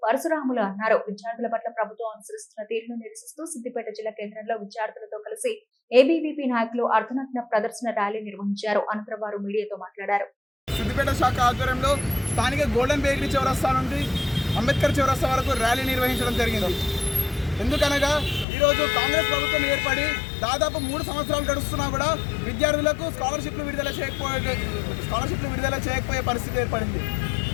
పరశురాములు అన్నారు. విద్యార్థుల పట్ల ప్రభుత్వం అనుసరిస్తున్న తీరును నిరసిస్తూ సిద్దిపేట జిల్లా కేంద్రంలో విద్యార్థులతో కలిసి ఏబీవీపీ నాయకులు అర్ధనగ్న ప్రదర్శన ర్యాలీ నిర్వహించారు. అనంతరం వారు మీడియాతో మాట్లాడారు. సిద్దిపేట శాఖ ఆధ్వర్యంలో స్థానిక గోల్డెన్ బేకరీ చౌరస్తా నుండి అంబేద్కర్ చౌరస్తా వరకు ర్యాలీ నిర్వహించడం జరిగింది. ఎందుకనగా ఈరోజు కాంగ్రెస్ ప్రభుత్వం ఏర్పడి దాదాపు 3 సంవత్సరాలు గడుస్తున్నా కూడా విద్యార్థులకు స్కాలర్షిప్లు విడుదల చేయకపోయే పరిస్థితి ఏర్పడింది.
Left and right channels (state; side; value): drops out; right; at 18.4 s